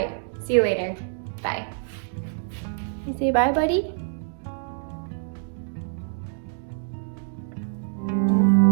see you later. Bye. You say bye, buddy?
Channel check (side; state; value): left; silent; digital silence